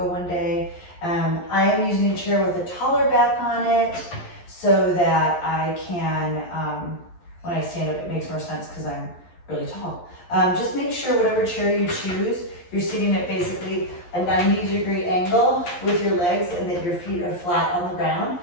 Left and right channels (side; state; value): right; late; 11 ms